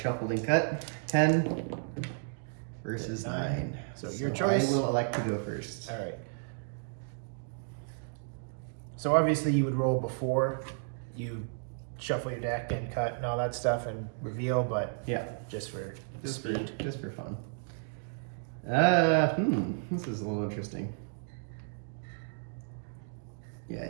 and cut. 10 versus 9. So your choice. I will elect to go first. Alright. So obviously you would roll before you shuffle your deck and cut and all that stuff and reveal, but yeah, just for just speed. For fun. This is a little interesting. Yeah,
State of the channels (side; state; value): left; silent; digital silence